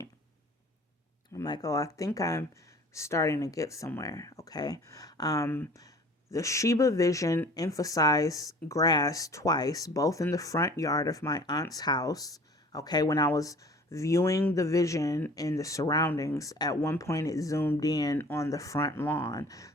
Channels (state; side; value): normal; both; correlation 0.47